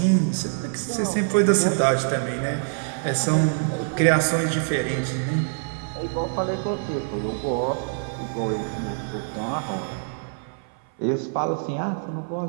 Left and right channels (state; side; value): silent; left; 58 dB below the other